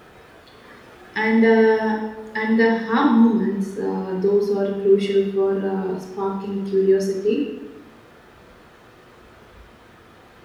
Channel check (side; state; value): both; identical; correlation 1.00